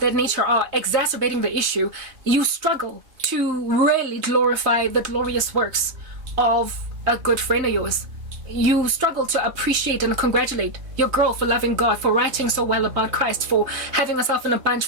that nature are exacerbating the issue. You struggle to really glorify the glorious works of a good friend of yours. You struggle to appreciate and congratulate your girl for loving God, for writing so well about Christ, for having herself in a bunch,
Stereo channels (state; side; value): late; left; 3.2 ms